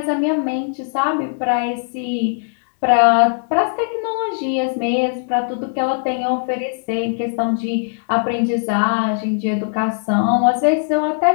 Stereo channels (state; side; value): silent; right; 66 dB below the other